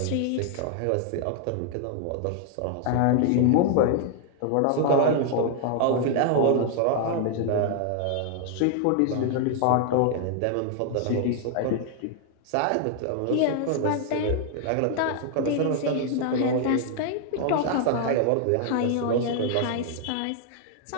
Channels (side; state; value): both; different; correlation 0.00